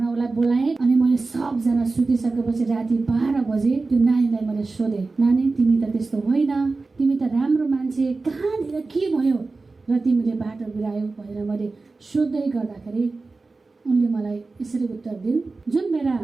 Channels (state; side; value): quieter; left; 3.7 dB